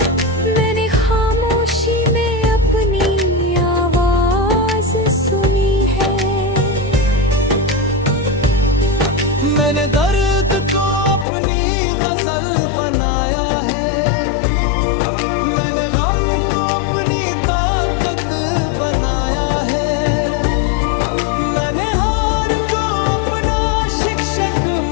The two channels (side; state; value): right; drops out; at 11.2 s